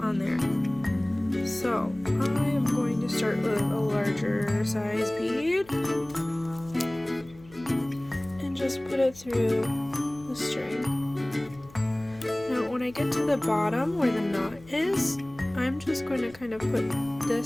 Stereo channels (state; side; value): noise; left; hum, 23 dB below the sound